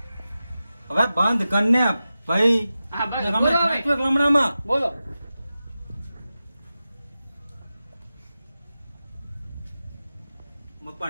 હવે બંધ કરને ભાઈ લમણામાં બોલો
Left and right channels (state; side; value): inverted; both; correlation -0.93